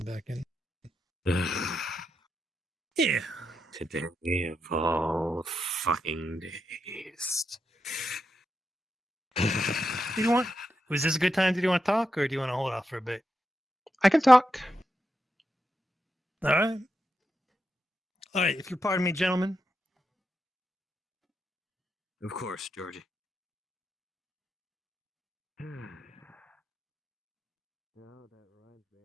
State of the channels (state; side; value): normal; both; correlation 0.86